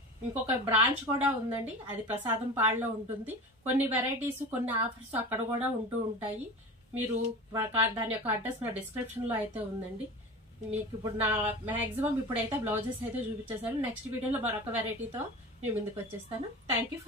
ఇంకొక బ్రాంచ్ కూడా ఉందండి, అది ప్రసాదం పాడులో ఉంటుంది. కొన్ని వెరైటీస్, కొన్ని ఆఫర్స్ అక్కడ కూడా ఉంటూ ఉంటాయి. మీరు దాని యొక్క అడ్రస్ నా డిస్క్రిప్షన్ లో అయితే ఉందండి. మీకు ఇప్పుడు నా మాక్సిమం ఇప్పుడైతే బ్లౌజెస్ అయితే చూపించేసాను. నెక్స్ట్ వీడియోలో మరొక వెరైటీతో మీ ముందుకు వచ్చేస్తాను. Thank you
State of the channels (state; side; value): normal; both; correlation 0.32